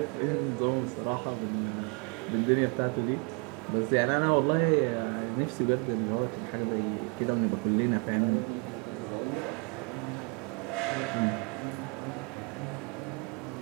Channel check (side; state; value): left; quieter; 33.4 dB